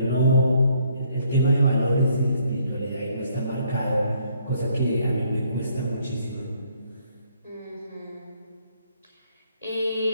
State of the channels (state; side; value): inverted; both; correlation -0.67